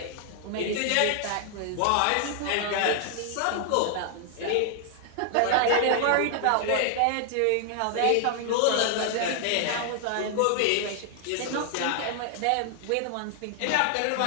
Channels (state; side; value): different; both; correlation 0.00